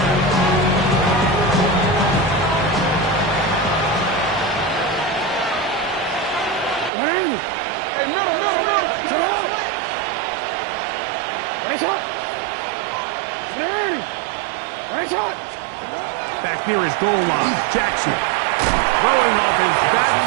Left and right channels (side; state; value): left; drops out; at 6.9 s